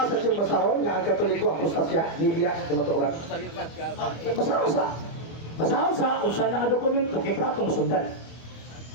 siyang basahon nga ang Katoliko apostasya, nibiya sa kamatuoran. Basaho sa usa na nga dokumento kay masundan.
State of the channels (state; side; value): late; right; 25 ms